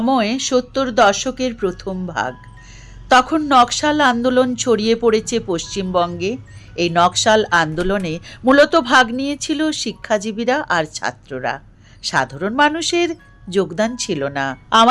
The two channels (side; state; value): both; identical; correlation 1.00